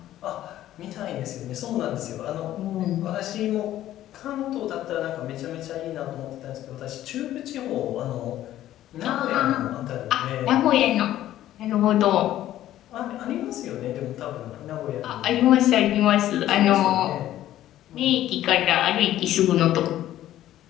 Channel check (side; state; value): right; quieter; 13.2 dB